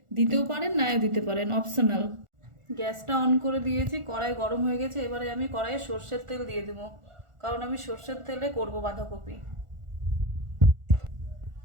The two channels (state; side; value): late; left; 1.4 ms